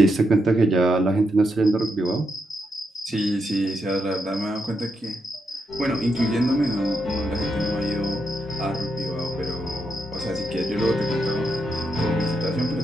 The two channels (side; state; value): both; normal; correlation 0.82